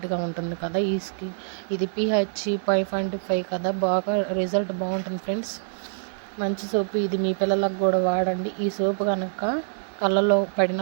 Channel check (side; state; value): left; silent; 62 dB below the other